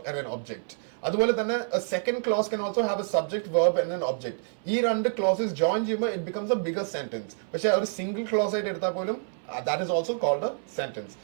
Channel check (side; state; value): left; silent; 60 dB below the other